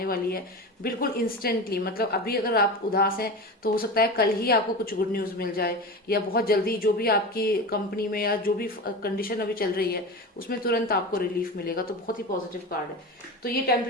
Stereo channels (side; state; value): both; normal; correlation 0.28